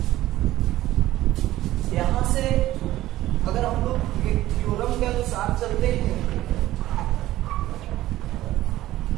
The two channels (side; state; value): left; quieter; 15.2 dB